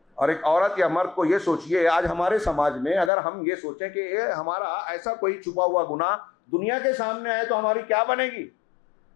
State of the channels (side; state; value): right; drops out; at 3.1 s